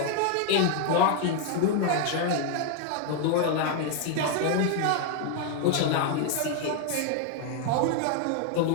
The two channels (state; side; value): different; both; correlation 0.00